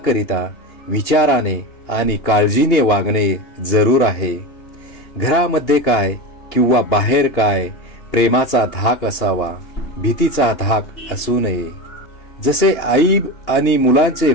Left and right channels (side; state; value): right; late; 2.8 ms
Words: विचाराने आणि काळजीने वागणे जरूर आहे. घरामध्ये काय किंवा बाहेर काय प्रेमाचा धाक असावा, भीतीचा धाक असू नये. जसे आई आणि मुलांचे